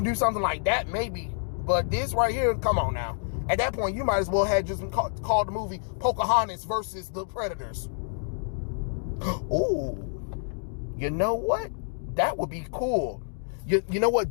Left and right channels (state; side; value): silent; right; digital silence